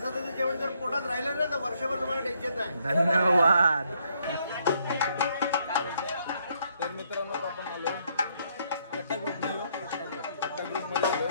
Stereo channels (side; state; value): both; inverted; correlation -0.71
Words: जेवण जर पोटात राहिलं ना तर वर्षभर तुम्हाला टेन्शन नाही. धन्यवाद. तर मित्रांनो आपण आलो कट्टा ग्रुपमध्ये